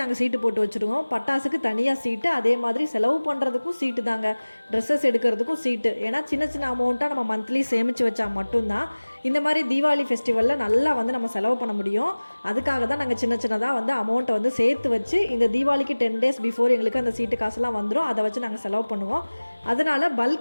நாங்கள் சீட்டு போட்டு வச்சுருவோம். பட்டாசுக்கு தனியாக சீட்டு, அதே மாதிரி செலவு பண்ணுறதுக்கும் சீட்டு தாங்க, ட்ரெஸ்ஸஸ் எடுக்கிறதுக்கும் சீட்டு. ஏன்னா சின்ன சின்ன அமௌண்ட்டாக நம்ம மந்த்லி சேமித்து வச்சா மட்டும்தான் இந்த மாதிரி தீபாவளி ஃபெஸ்டிவலில் நல்லா வந்து நம்ம செலவு பண்ண முடியும். அதுக்காக தான் நாங்கள் சின்ன சின்னதாக வந்து அமௌண்ட்டை வந்து சேர்த்து வச்சு இந்த தீபாவளிக்கு 10 days பிஃபோர் எங்களுக்கு அந்த சீட்டு காசுலாம் வந்துடும். அதை வச்சு நாங்கள் செலவு பண்ணுவோம். அதனால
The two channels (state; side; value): inverted; both; correlation -1.00